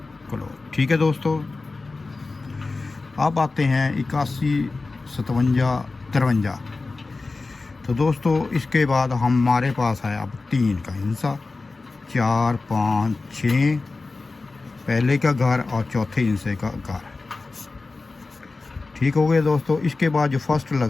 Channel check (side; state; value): right; quieter; 3.7 dB